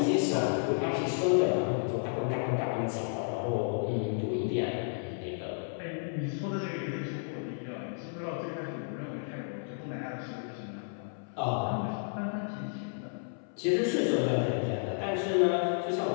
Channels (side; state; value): right; silent; 56 dB below the other